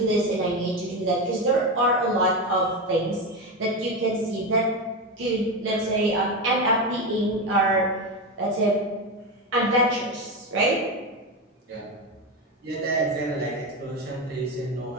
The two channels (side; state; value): both; normal; correlation 0.16